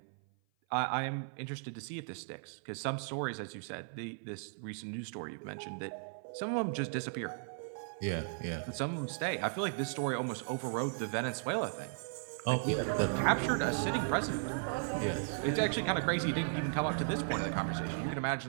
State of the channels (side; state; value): left; silent; 54 dB below the other